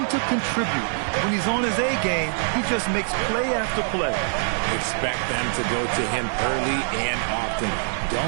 to contribute. When he's on his A game, he just makes play after play. Expect them to go to him early and often.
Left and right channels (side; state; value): left; silent; 63 dB below the other